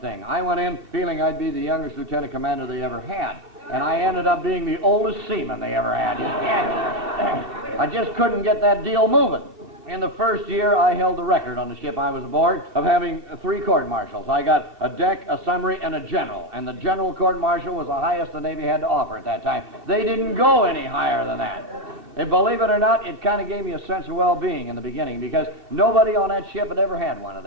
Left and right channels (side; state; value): left; late; 2.7 ms